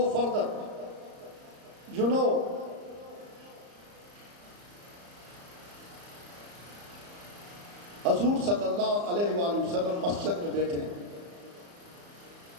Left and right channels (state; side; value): late; left; 34 ms